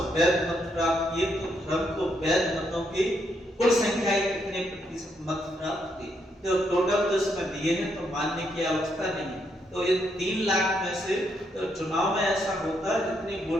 वैध मत प्राप्त किए, तो धर्म को वैध मतों की कुल संख्या के कितने प्रतिशत मत प्राप्त हुए? तो टोटल तो इसमें दिए हैं, तो मानने की आवश्यकता नहीं है। तो ये 3 लाख में से तो चुनाव में ऐसा होता है जितनी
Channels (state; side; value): normal; both; correlation 0.77